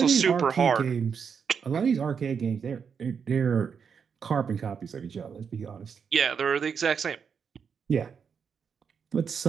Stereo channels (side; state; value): left; quieter; 6.6 dB